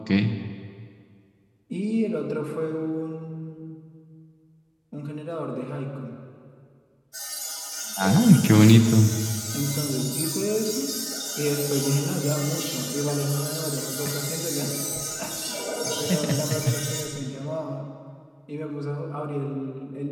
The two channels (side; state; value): both; identical; correlation 1.00